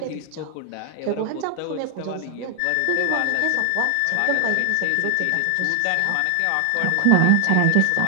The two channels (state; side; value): different; both; correlation 0.00